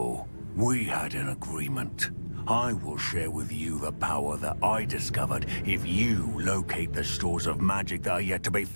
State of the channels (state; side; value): inverted; both; correlation -1.00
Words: We had an agreement. I will share with you the power that I discovered if you locate the stores of magic that are yet to be